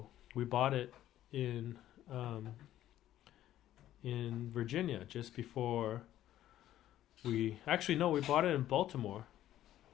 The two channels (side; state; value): right; quieter; 12.8 dB